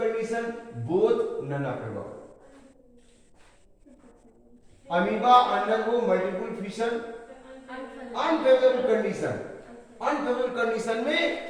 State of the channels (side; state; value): both; identical; correlation 1.00